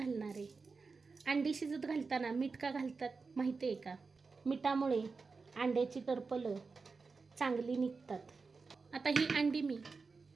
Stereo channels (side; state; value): left; quieter; 4.5 dB